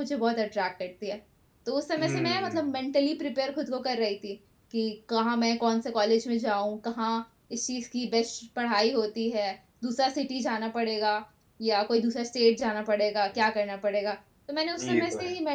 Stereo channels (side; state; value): both; identical; correlation 1.00